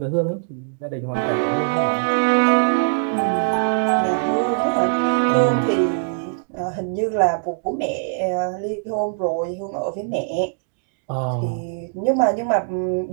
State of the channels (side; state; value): left; silent; digital silence